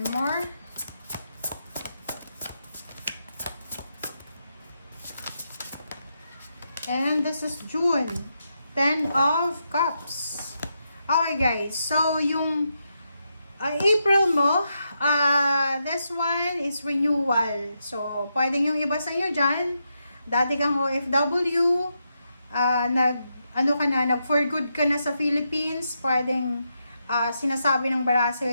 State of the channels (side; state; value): both; inverted; correlation -0.83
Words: more. And this is June. 10 of Cups. Okay guys, so yung April mo, this one is renewal. So, pwedeng yung iba sa inyo dyan, dati kang OFW, nag for good ka na sa Philippines, pwedeng sinasabi ng bara